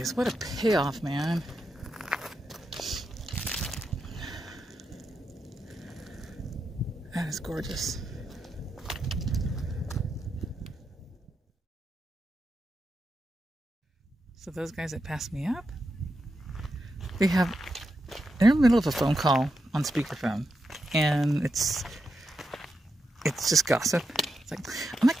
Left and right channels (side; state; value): both; normal; correlation 0.86